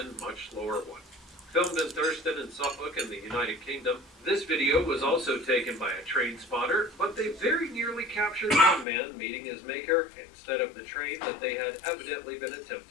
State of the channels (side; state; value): right; drops out; at 8.8 s